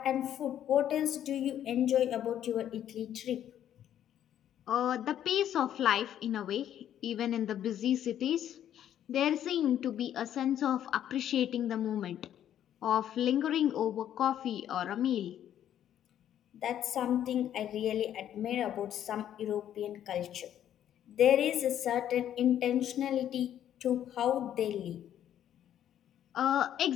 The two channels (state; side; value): quieter; right; 10.7 dB